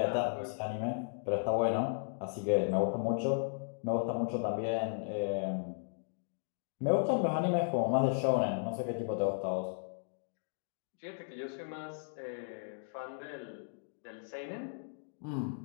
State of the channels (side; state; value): right; silent; digital silence